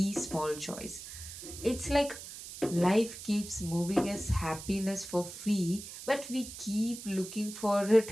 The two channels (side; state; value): right; noise; hiss, 12 dB below the sound